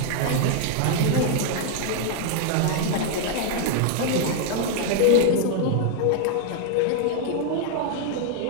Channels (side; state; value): both; different; correlation 0.00